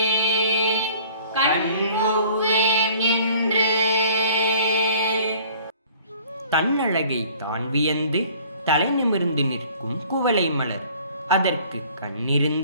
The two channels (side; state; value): both; inverted; correlation -0.52